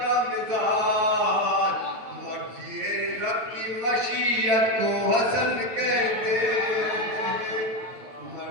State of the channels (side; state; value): left; late; 9.2 ms